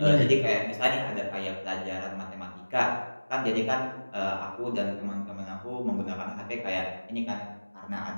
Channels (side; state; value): both; inverted; correlation -1.00